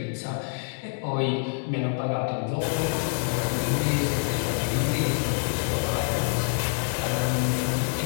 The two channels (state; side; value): silent; right; 61 dB below the other